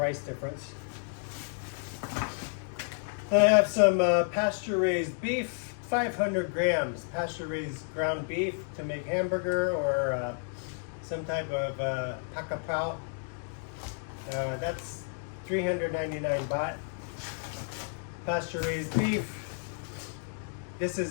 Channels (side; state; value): right; silent; 56 dB below the other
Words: difference. I have some pasture-raised beef, 500 grams pasture-raised ground beef to make hamburger or some type of pakapao. That's 399 baht. Pasture-raised beef. This